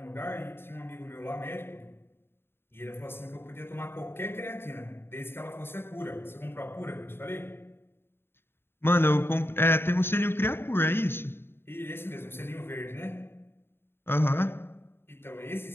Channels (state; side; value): late; right; 0.11 ms